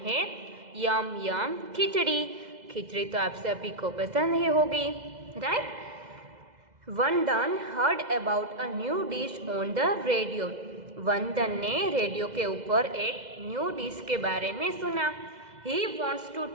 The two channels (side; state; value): left; late; 2.0 ms